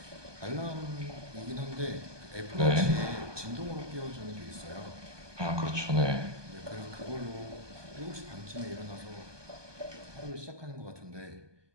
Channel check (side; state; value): left; late; 1.2 ms